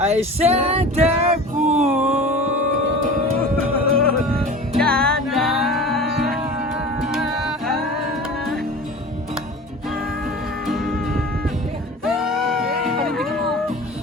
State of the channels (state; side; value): normal; both; correlation 0.37